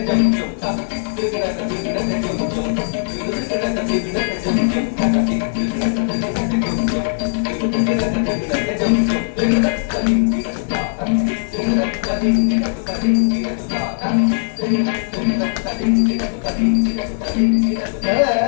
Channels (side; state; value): right; silent; 67 dB below the other